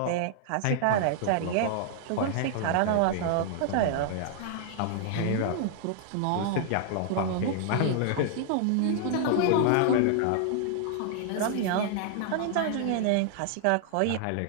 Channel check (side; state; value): both; different; correlation -0.01